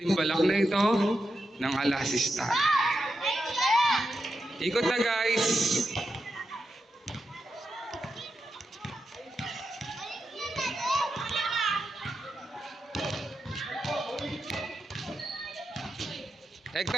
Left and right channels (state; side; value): normal; both; correlation 0.87